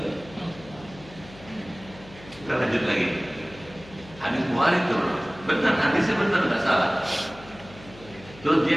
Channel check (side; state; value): left; noise; hum, 20 dB below the sound